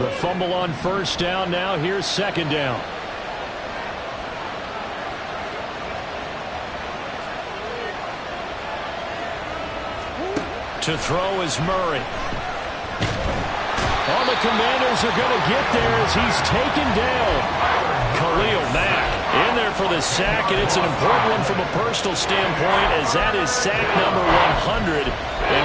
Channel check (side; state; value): both; identical; correlation 1.00